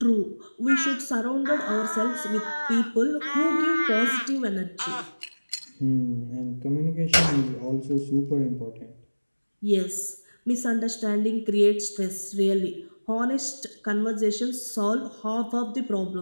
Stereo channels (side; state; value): both; inverted; correlation -1.00